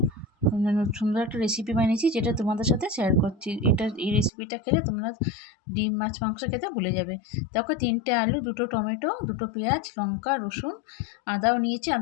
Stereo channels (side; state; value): right; drops out; at 4.3 s